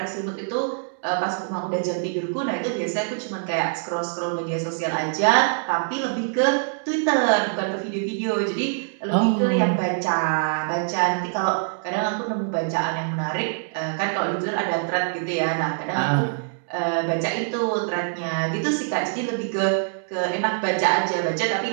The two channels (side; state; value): left; silent; digital silence